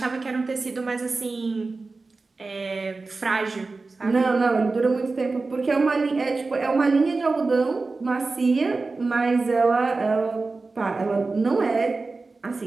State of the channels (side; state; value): left; quieter; 3.8 dB